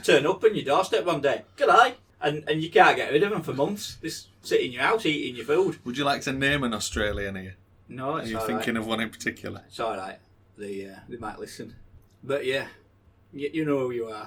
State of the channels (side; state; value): both; identical; correlation 1.00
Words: turn up on your doorstep one day. G'day. And you can't get rid of them for months. They sit in your house eating your food. Would you like to name an Australian here? No, it's all right. Are you thinking of one in particular? It's all right. They might listen. But yeah, you know who you